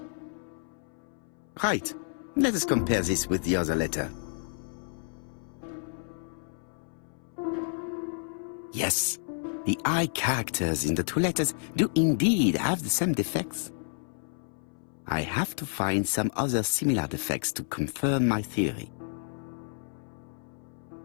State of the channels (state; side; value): silent; right; 58 dB below the other